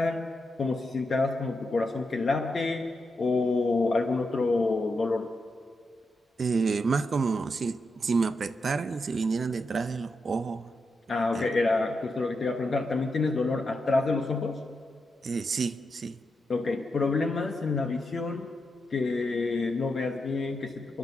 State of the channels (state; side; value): normal; both; correlation 0.85